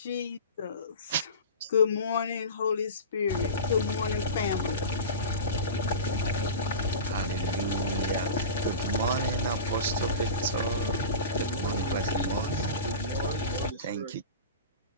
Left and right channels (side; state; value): both; inverted; correlation -0.31